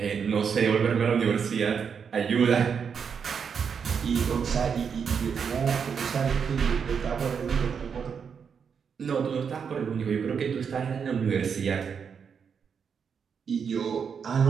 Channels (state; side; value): quieter; left; 6.7 dB